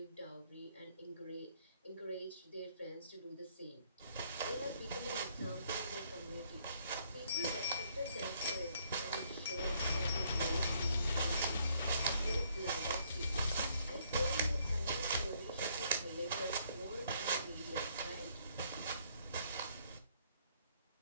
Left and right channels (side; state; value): both; inverted; correlation -0.68